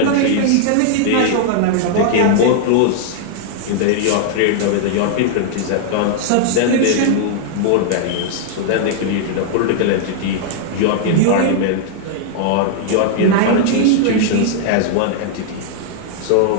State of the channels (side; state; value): both; different; correlation -0.01